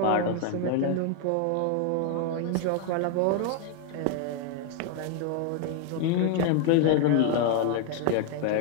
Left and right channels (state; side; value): different; both; correlation 0.01